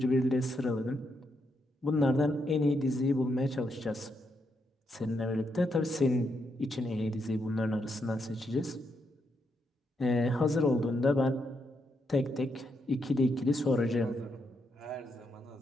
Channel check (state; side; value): normal; both; correlation 0.80